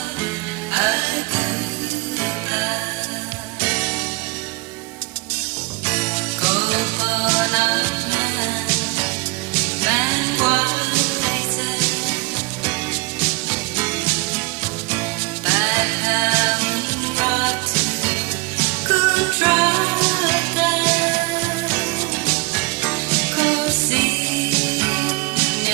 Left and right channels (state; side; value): quieter; left; 26.7 dB